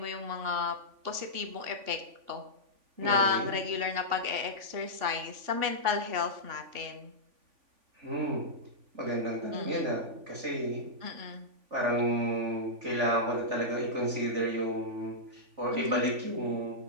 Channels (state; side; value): late; left; 3.5 ms